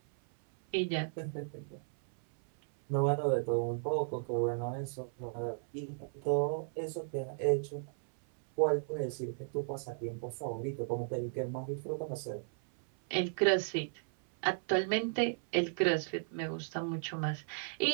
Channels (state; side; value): silent; left; 54 dB below the other